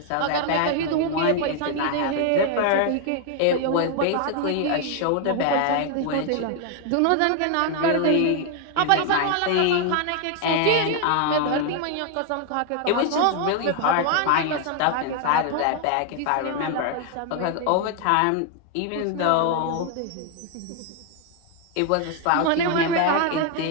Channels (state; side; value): different; both; correlation 0.00